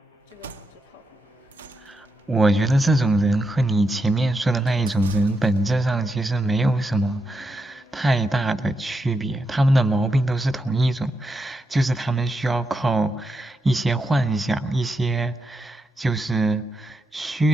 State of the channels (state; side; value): normal; both; correlation 0.84